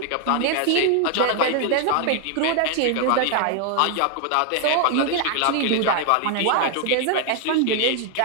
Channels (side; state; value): both; different; correlation 0.00